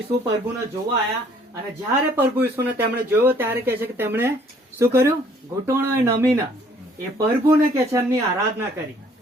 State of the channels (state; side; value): normal; both; correlation 0.60